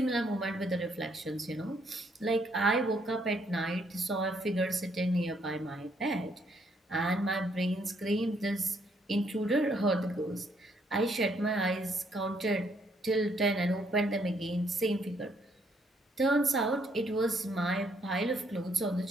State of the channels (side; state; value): both; normal; correlation 0.70